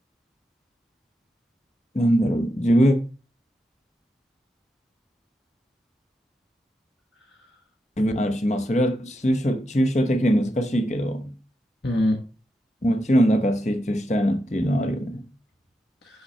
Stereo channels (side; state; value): both; normal; correlation 0.86